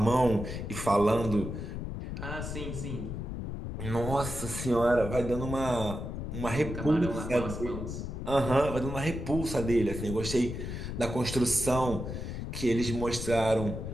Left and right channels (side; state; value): left; noise; rumble, 6 dB below the sound